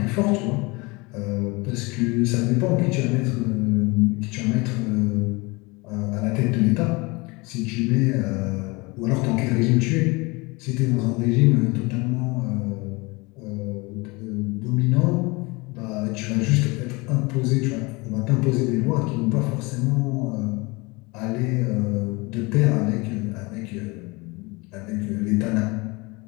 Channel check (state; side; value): quieter; right; 25.6 dB